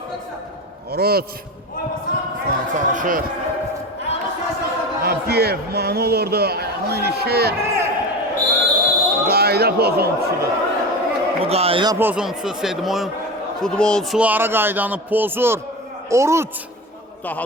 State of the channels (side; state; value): both; normal; correlation 0.26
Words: Oruc. İsmail çalışır. Abdiyev, mani olurdu. Ayağına ilişir. Qayda pozuntusudur. Bu qayda pozuntusu Sedmoyun futbolçulara qaydanı pozur. Oruc.